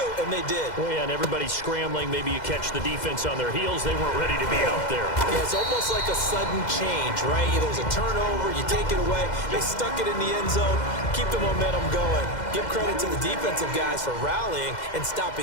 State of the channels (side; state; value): right; late; 2.0 ms